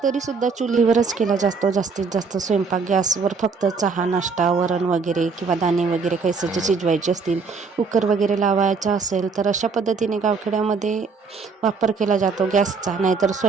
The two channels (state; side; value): quieter; left; 4.9 dB